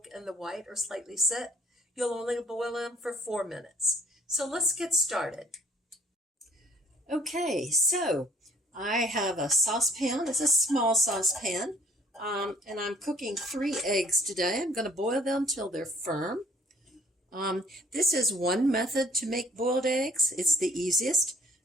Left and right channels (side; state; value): both; normal; correlation 0.59